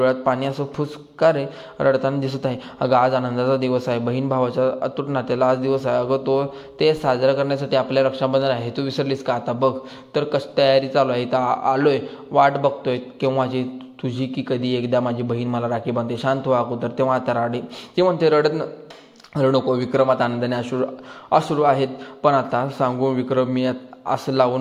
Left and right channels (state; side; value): identical; both; correlation 1.00